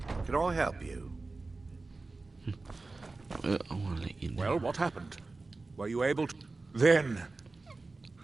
Can I help you? I want to let you know. Well, what happened? Were you able to... Then...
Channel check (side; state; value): left; quieter; 3.5 dB